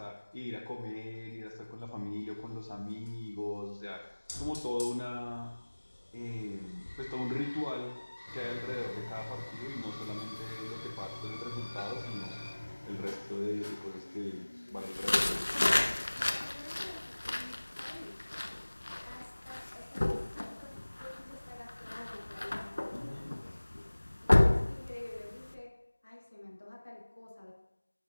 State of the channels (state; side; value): inverted; both; correlation -1.00